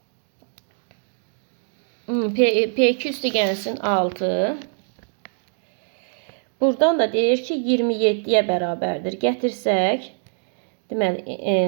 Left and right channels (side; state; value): left; silent; digital silence